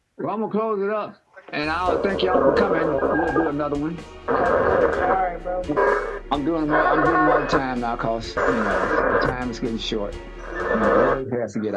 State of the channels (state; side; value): identical; both; correlation 1.00